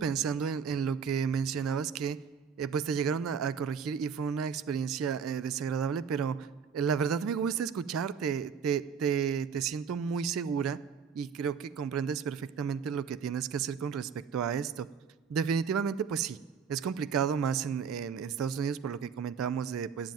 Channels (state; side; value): quieter; left; 6.6 dB